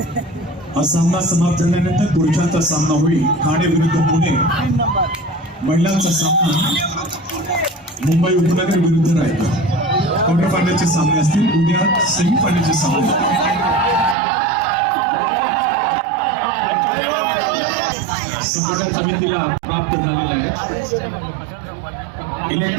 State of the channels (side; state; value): left; drops out; at 14.2 s